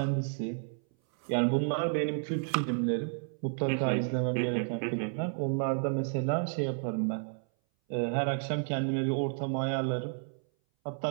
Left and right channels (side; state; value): left; silent; 57 dB below the other